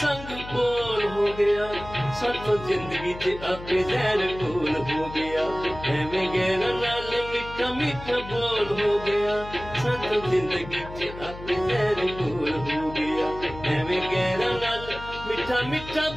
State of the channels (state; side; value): noise; left; hum, 13 dB below the sound